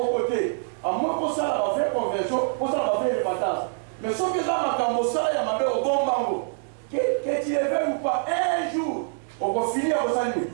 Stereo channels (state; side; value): silent; left; digital silence